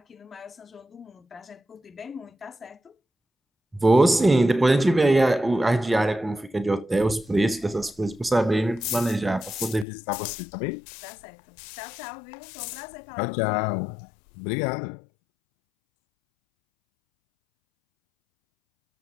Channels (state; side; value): drops out; right; at 9.9 s